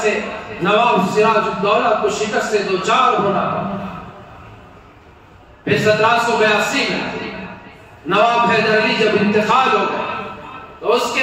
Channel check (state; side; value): identical; both; correlation 1.00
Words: سے نواب سراج الدولہ کو شکست سے دوچار ہونا پڑا۔ پھر 1782 میں نواب حیدر علی جب انتقال ہو گئے تو اس